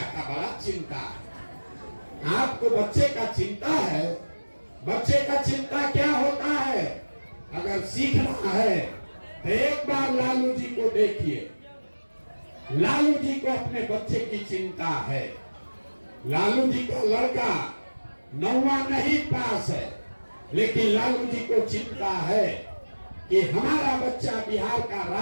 का बड़ा चिंता है। आपको बच्चे का चिंता है? बच्चे का चिंता क्या होता है? अगर सीखना है तो एक बार लालू जी को देखिए। लालू जी को अपने बच्चे की चिंता है। लालू जी का लड़का 9वां नहीं पास है, लेकिन लालू जी को चिंता है कि हमारा बच्चा बिहार का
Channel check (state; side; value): inverted; both; correlation -1.00